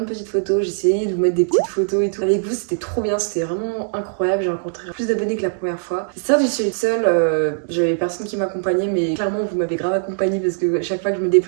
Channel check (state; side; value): silent; left; digital silence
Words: petites photos, j'ai essayé de vous mettre des petites photos et tout. Avec vous c'était trop bien, c'était vraiment incroyable, j'ai rencontré plus d'abonnés que la première fois. Certes j'y suis allée seule, j'avais personne qui m'accompagnait, mais clairement vous m'avez grave accompagnée parce que chaque fois que je me